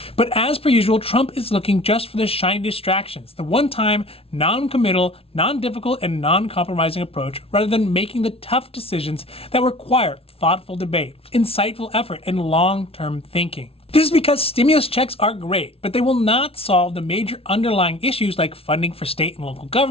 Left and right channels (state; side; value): late; right; 0.27 ms